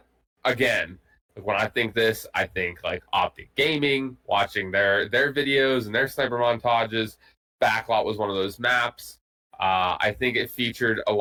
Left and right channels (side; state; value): both; identical; correlation 1.00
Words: again. When I think this, I think like Optic Gaming, watching their videos and their sniper montages. Backlot was one of those maps. I think it featured a